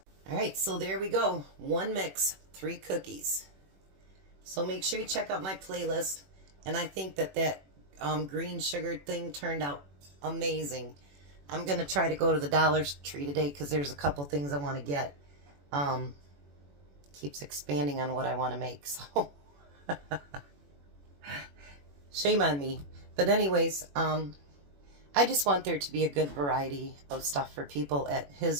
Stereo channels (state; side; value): late; left; 21 ms